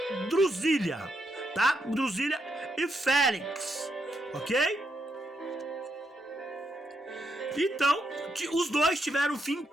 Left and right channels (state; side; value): normal; both; correlation 0.80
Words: Drusília, tá? Drusília e Félix, ok? Então, os dois tiveram um fim